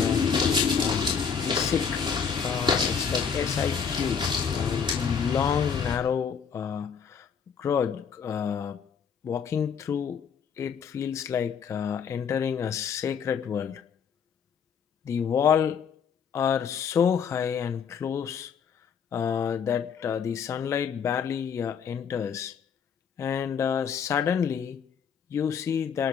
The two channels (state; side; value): quieter; right; 6.8 dB